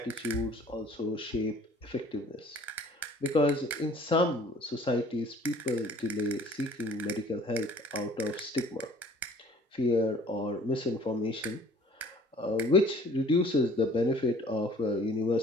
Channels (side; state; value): both; normal; correlation 0.52